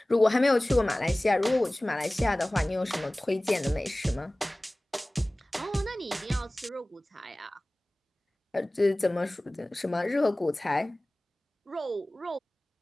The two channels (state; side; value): normal; both; correlation 0.98